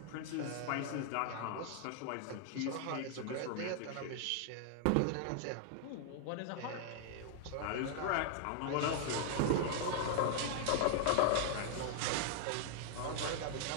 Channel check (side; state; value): both; different; correlation 0.00